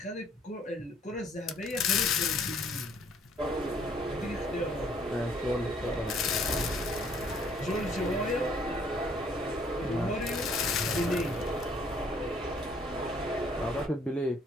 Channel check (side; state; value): both; normal; correlation 0.61